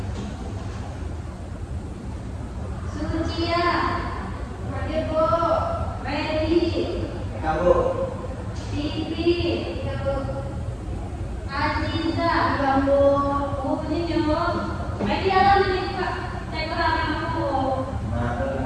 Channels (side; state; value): both; identical; correlation 1.00